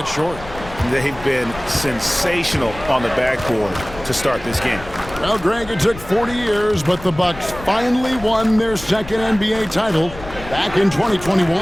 short. They've been sensational on the backboard to start this game. Well, Greg, it took 40 years, but the Bucks finally won their second NBA title back in 2021.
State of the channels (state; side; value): noise; left; rumble, 15 dB below the sound